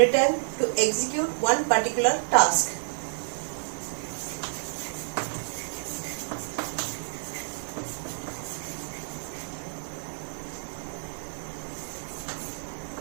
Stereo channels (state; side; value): silent; left; 59 dB below the other